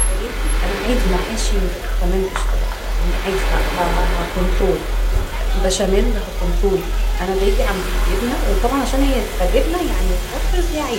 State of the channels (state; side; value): identical; both; correlation 1.00